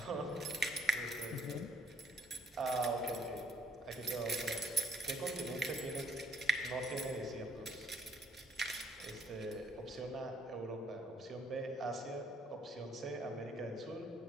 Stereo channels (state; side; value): normal; both; correlation 0.67